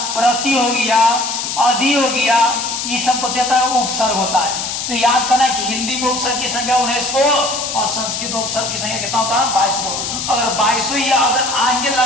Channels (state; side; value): noise; left; hiss, 4 dB below the sound